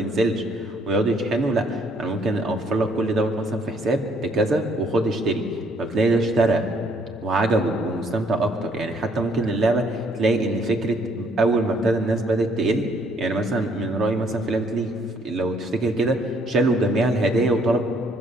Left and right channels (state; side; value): normal; both; correlation 0.65